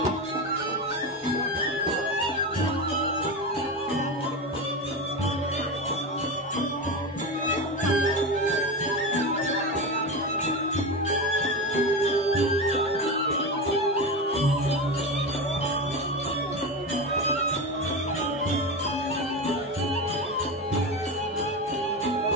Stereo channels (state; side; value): normal; both; correlation 0.20